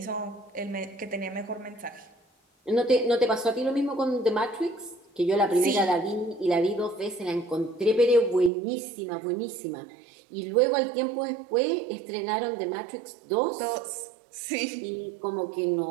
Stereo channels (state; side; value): drops out; left; at 8.5 s